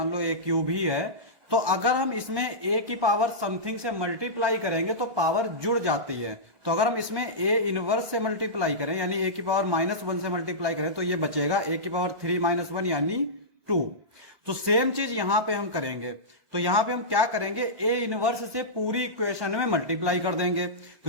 लो a³ ही है, तो अगर हम इसमें a की पावर समथिंग से मल्टीप्लाई करेंगे तो पावर जुड़ जाती है। तो अगर हम इसमें a इनवर्स से मल्टीप्लाई करें यानी a की पावर -1 से मल्टीप्लाई करें तो ये बचेगा a की पावर 3 - 1 यानी 2। तो सेम चीज यहां पे हम करेंगे। तो यहां पे हम क्या करेंगे, a इनवर्स से पूरी इक्वेशन में मल्टीप्लाई कर देंगे।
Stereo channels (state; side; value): late; left; 1.6 ms